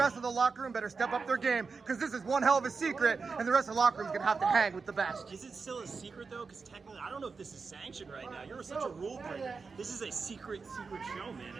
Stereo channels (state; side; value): quieter; left; 4.8 dB